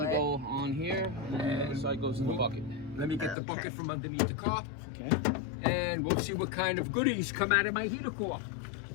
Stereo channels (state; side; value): drops out; right; at 3.4 s